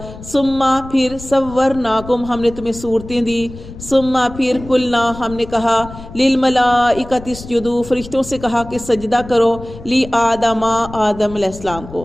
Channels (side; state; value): left; noise; rumble, 15 dB below the sound